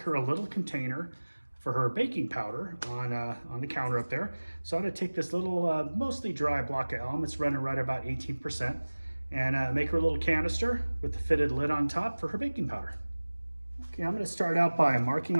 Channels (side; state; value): both; inverted; correlation -1.00